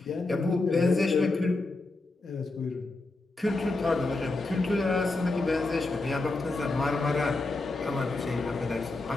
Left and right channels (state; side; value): quieter; right; 3.1 dB